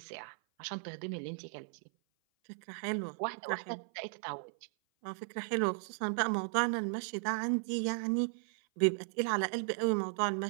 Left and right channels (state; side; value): silent; left; 54 dB below the other